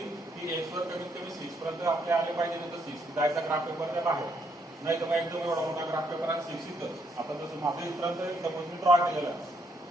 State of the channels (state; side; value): normal; both; correlation 0.73